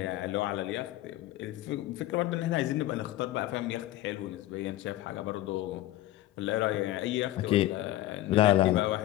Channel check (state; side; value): quieter; right; 15.6 dB